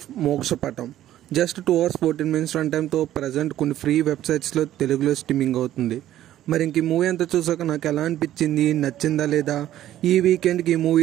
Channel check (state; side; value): quieter; left; 12.8 dB